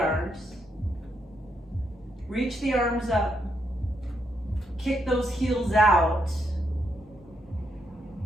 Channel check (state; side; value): normal; both; correlation 0.79